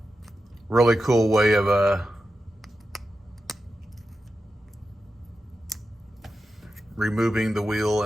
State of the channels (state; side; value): normal; both; correlation 0.90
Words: Really cool way of removing the wheel